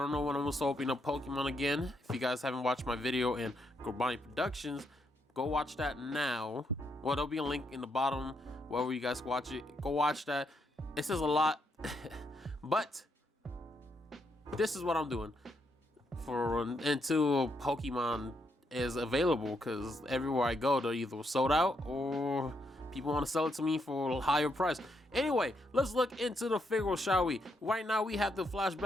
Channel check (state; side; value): normal; both; correlation 0.78